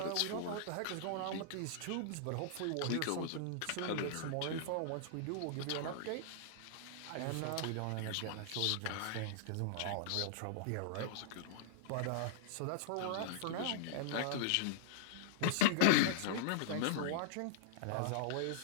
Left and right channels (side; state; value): both; different; correlation -0.01